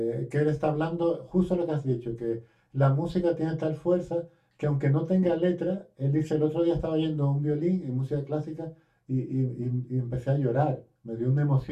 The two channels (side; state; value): both; identical; correlation 1.00